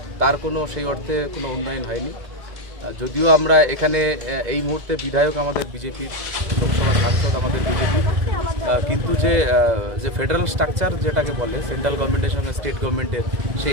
তার কোনো সেই অর্থে কোনো উন্নয়ন হয়নি। যদিও আমরা এখানে এই মুহূর্তে বিধায়ক আমাদের বিজেপির, লোকসভা সাংসদ আমাদের বিজেপি, কিন্তু যে ফেডারেল স্ট্রাকচার যেটাকে বলে সেন্ট্রাল গভর্নমেন্টের সঙ্গে স্টেট গভর্নমেন্টের,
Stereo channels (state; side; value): late; left; 2.0 ms